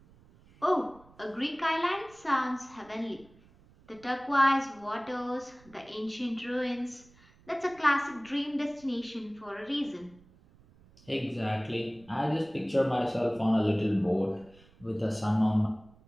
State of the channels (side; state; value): right; noise; rumble, 27 dB below the sound